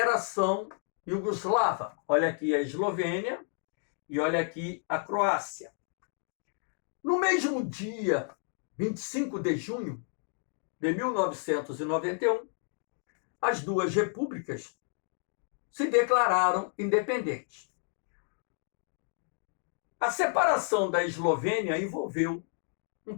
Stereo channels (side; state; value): right; silent; 56 dB below the other